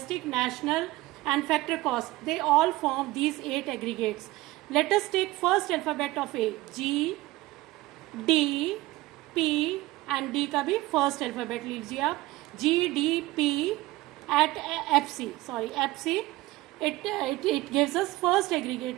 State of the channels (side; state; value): left; quieter; 18.9 dB